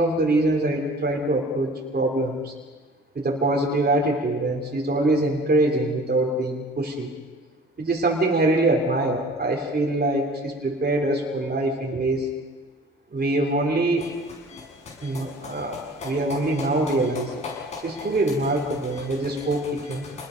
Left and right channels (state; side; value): normal; both; correlation 0.46